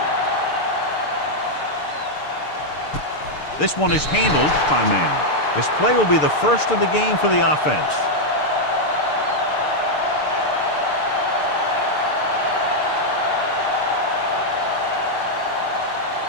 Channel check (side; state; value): right; late; 6.7 ms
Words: This one is handled by man. This play will be the first of the game for the offense.